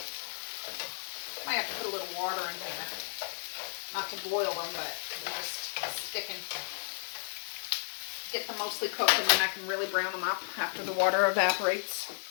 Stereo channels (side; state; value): right; silent; 56 dB below the other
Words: Might have to put a little water in here. Not to boil them, but just sticking. Get them mostly cooked, and then I can really brown them up after the water evaporates.